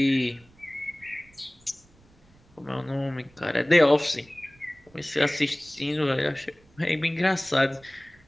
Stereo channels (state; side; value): noise; right; rumble, 29 dB below the sound